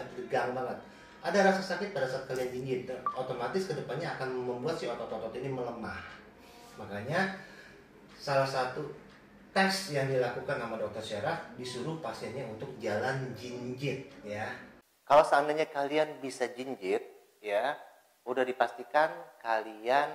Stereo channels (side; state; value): both; identical; correlation 1.00